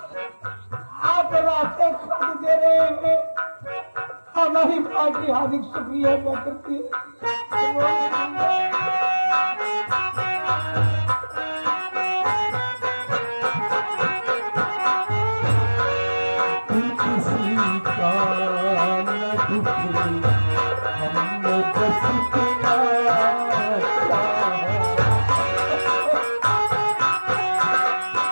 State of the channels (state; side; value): inverted; both; correlation -1.00